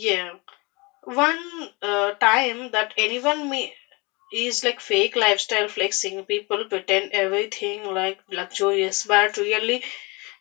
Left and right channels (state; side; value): quieter; right; 27.2 dB